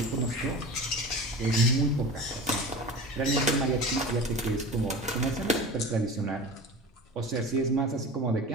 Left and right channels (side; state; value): both; normal; correlation 0.33